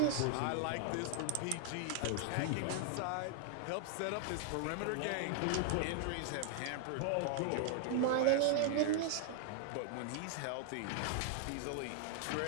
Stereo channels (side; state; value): both; different; correlation 0.00